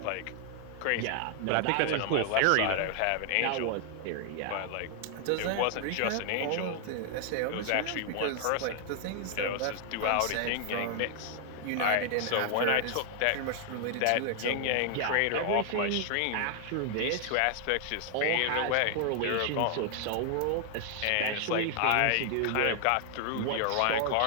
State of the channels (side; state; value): both; different; correlation 0.00